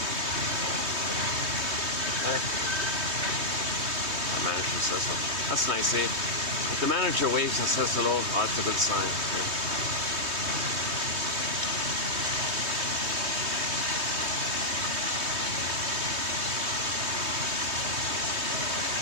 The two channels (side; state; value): left; late; 3.2 ms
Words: right. The manager says so. That's nice, eh? If the manager waves and says hello, oh, that's a good sign. Okay.